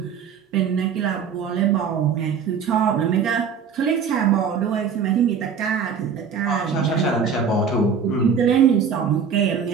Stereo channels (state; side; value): quieter; left; 6.5 dB